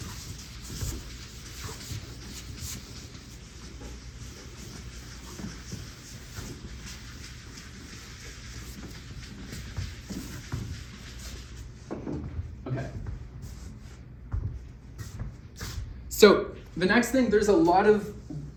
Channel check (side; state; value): both; identical; correlation 1.00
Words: So the next thing, there's a lot of